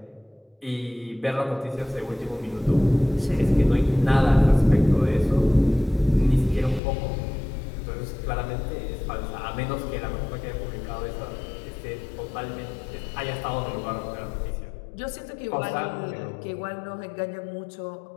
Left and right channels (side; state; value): right; drops out; at 6.8 s